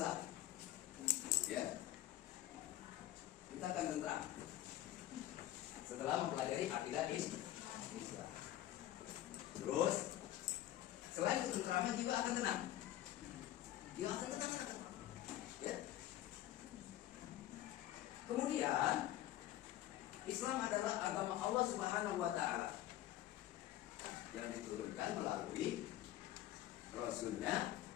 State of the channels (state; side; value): quieter; right; 13.8 dB